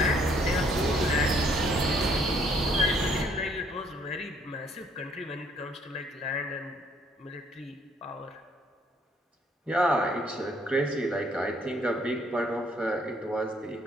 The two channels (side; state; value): both; normal; correlation 0.65